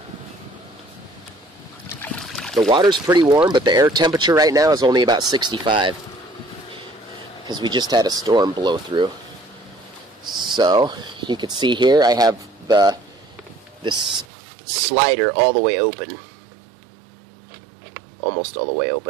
The water's pretty warm, but the air temperature right now is only about 65 because we just had a storm blow through. So you can see here I have this slider all the way open, almost all the way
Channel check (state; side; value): drops out; left; at 14.2 s